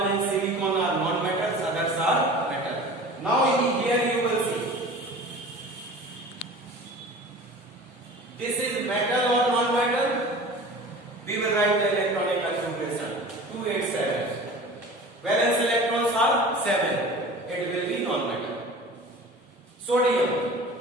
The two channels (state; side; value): normal; both; correlation 0.40